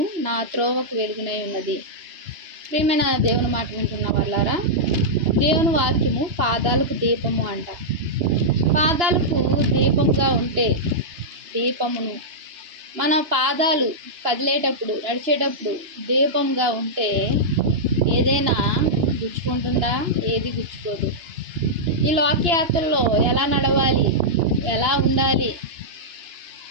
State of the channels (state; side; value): late; left; 2.9 ms